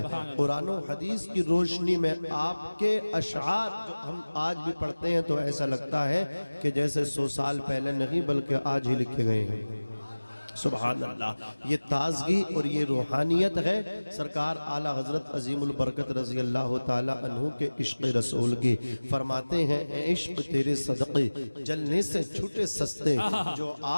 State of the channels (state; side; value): inverted; both; correlation -1.00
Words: قرآن و حدیث کی روشنی میں آپ کے اشعار جو ہم آج بھی پڑھتے ہیں تو ایسا لگتا ہے کہ جیسے 100 سال پہلے نہیں بلکہ آج ہی لکھے گئے ہیں۔ سبحان اللہ، یہ تازگی اور یہ روحانیت ہے سرکار اعلیٰ حضرت عظیم البرکت رضی اللہ تعالی عنہ کے عشق رسول کی۔ فرماتے ہیں اے عشق تیرے صدقے جلنے سے چھوٹے سستے، جو